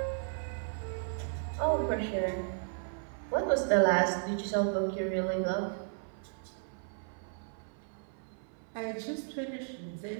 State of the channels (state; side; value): silent; left; 55 dB below the other